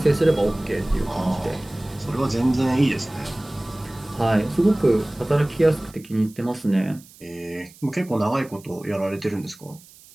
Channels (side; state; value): right; noise; hiss, 23 dB below the sound